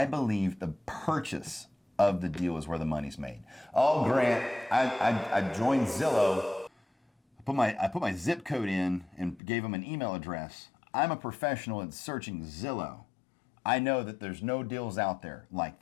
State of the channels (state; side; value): drops out; right; at 9.4 s